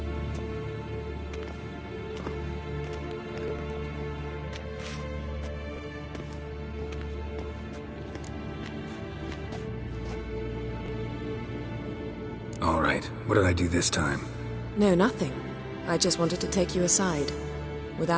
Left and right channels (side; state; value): both; identical; correlation 1.00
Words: All right. What did I do this time? No, nothing. I just wanted to take you aside,